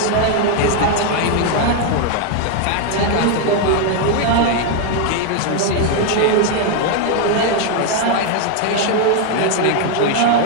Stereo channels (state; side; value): different; both; correlation 0.01